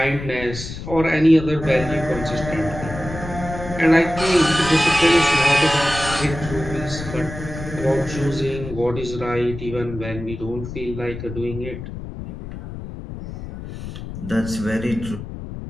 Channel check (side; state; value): left; noise; rumble, 10 dB below the sound